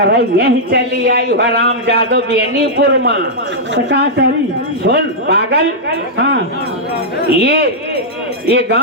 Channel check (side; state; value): both; normal; correlation -0.08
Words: यही चली आई हराम जादो बेनीपुर में। तो का करी? सुन पागल, हाँ ये